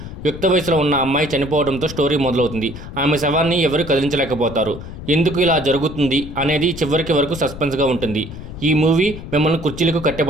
యుక్త వయసులో ఉన్న అమ్మాయి చనిపోవడంతో స్టోరీ మొదలవుతుంది. ఆమె శవాన్ని ఎవరు కదిలించలేకపోతారు. ఎందుకు ఇలా జరుగుతుంది అనేది చివరికి వరకు సస్పెన్స్గా ఉంటుంది. ఈ మూవీ మిమ్మల్ని కుర్చీలకు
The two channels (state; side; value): noise; left; rumble, 11 dB below the sound